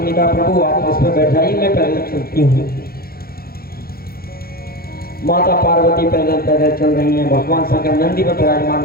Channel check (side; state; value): right; late; 0.44 ms